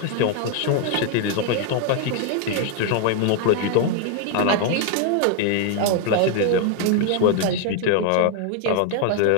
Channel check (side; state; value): both; different; correlation 0.00